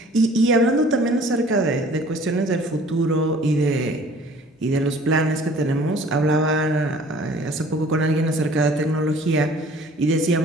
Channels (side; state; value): both; normal; correlation 0.51